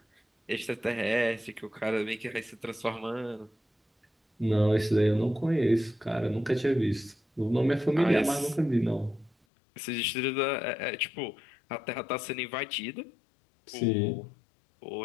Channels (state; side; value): drops out; right; at 9.3 s